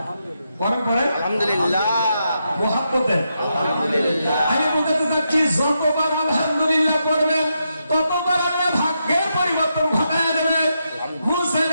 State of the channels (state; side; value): inverted; both; correlation -0.83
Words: আলহামদুলিল্লাহ। মুহাব্বতে আলহামদুলিল্লাহ। আমি বলতে চাচ্ছি, যতবার আলহামদুলিল্লাহ করবেন ততবার আপনার ভাগ্যের পরিবর্তন ঘটায় দেবে। মুসা